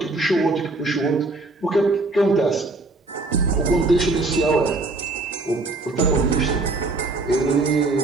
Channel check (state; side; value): quieter; left; 3.2 dB